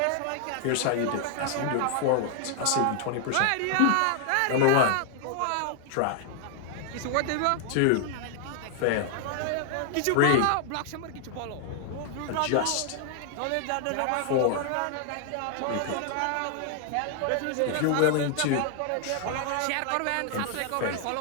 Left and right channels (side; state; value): both; different; correlation 0.00